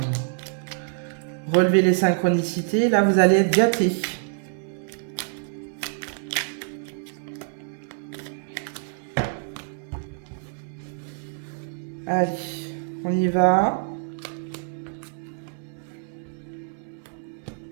relever les synchronicités, là, vous allez être gâtés. Allez. On y va.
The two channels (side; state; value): left; silent; 61 dB below the other